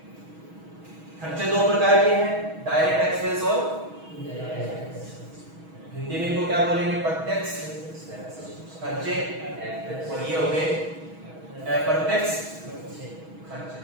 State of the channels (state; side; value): late; left; 6.3 ms